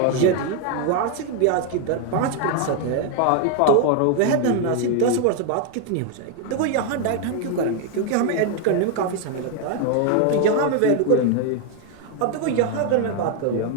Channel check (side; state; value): both; different; correlation 0.01